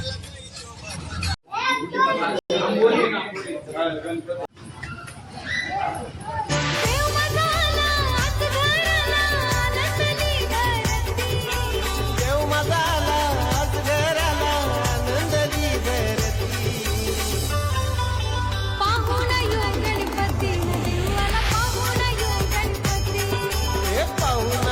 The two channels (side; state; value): both; identical; correlation 1.00